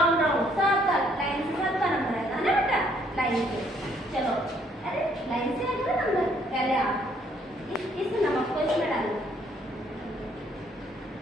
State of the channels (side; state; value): both; normal; correlation 0.66